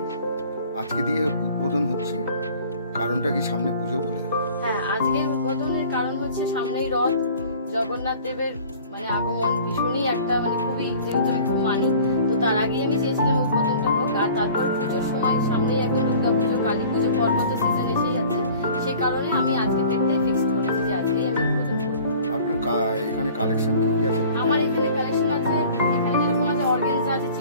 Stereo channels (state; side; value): inverted; both; correlation -0.48